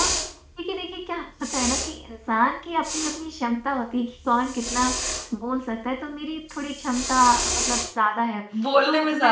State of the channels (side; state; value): both; identical; correlation 1.00